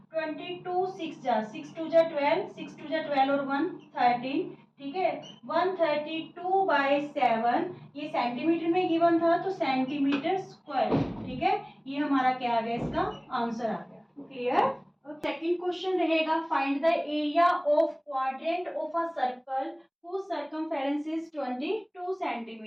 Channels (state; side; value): identical; both; correlation 1.00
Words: 22 6 जा 6 2 जा 12, 6 2 जा 12 और 1 13. ठीक है, 132/7 ये सेंटीमीटर में गिवन था तो सेंटीमीटर स्क्वायर. ठीक है, ये हमारा क्या आ गया, इसका आंसर आ गया. क्लियर. सेकंड क्वेश्चन रहेगा find the area of quadrant of a circle whose circumference is 22